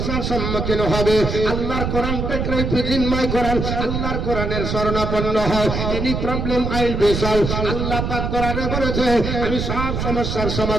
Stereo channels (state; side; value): noise; right; rumble, 2 dB below the sound